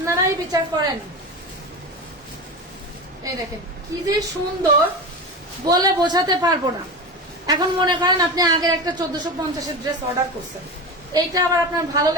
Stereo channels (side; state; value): both; normal; correlation 0.24